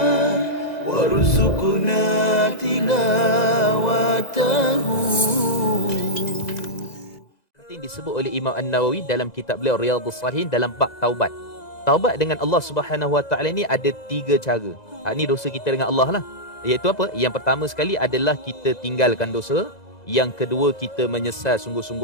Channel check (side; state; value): right; late; 2.0 ms